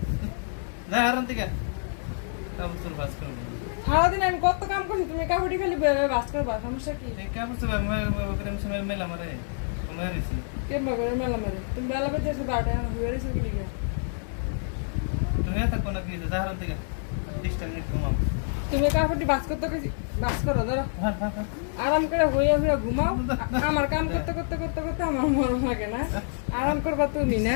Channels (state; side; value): silent; right; digital silence